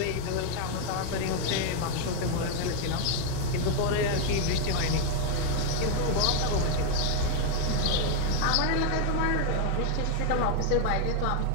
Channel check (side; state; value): both; different; correlation 0.00